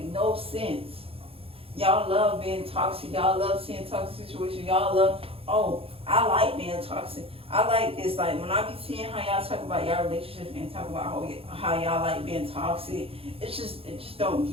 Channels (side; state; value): left; late; 0.27 ms